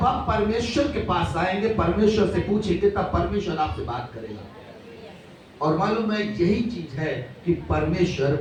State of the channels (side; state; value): both; identical; correlation 1.00